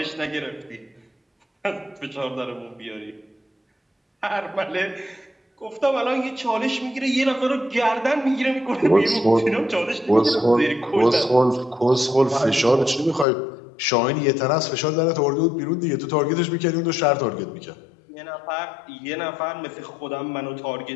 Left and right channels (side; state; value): right; drops out; at 13.2 s